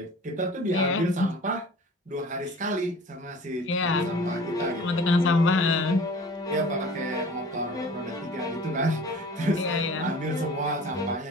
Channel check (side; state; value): both; normal; correlation 0.44